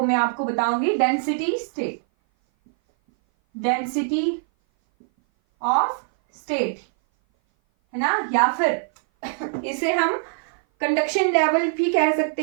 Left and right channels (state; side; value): silent; left; 58 dB below the other